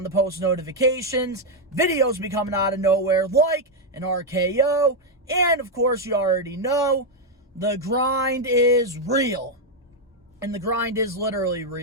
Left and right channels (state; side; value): normal; both; correlation 0.01